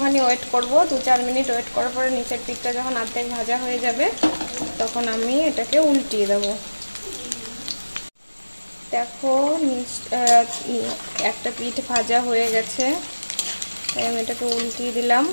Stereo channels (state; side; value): inverted; both; correlation -1.00